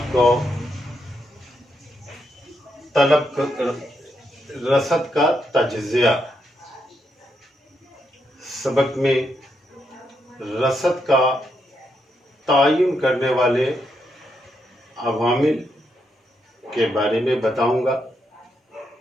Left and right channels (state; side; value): normal; both; correlation 0.80